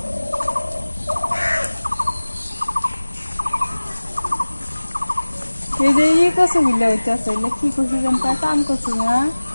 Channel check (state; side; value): inverted; both; correlation -1.00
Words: এই যে ইয়ে কচু গুলো হইতেছে কি কচু জানতা কাম কচু না